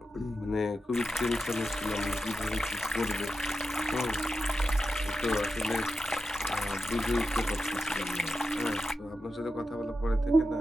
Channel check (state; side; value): normal; both; correlation 0.90